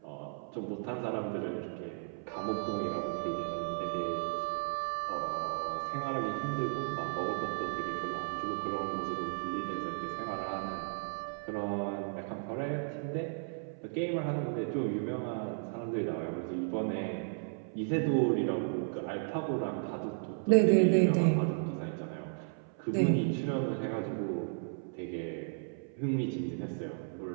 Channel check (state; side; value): silent; left; 55 dB below the other